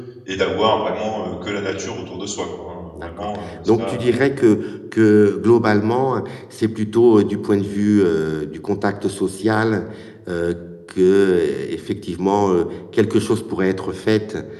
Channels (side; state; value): both; identical; correlation 1.00